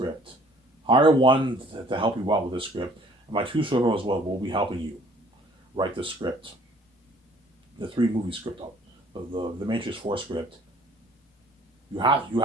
Hire one to help you out with this script. And my 2 servers will be helping you write the script. The 3 movie script, the Matrix 4 script. You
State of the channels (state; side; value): normal; both; correlation 0.56